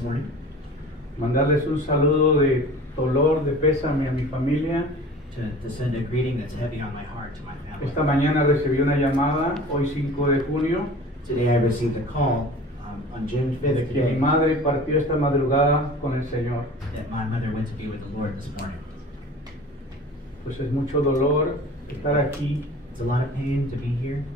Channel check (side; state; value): both; normal; correlation 0.41